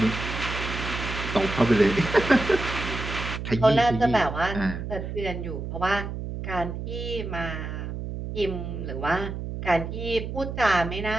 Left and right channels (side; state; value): right; noise; hum, 6 dB below the sound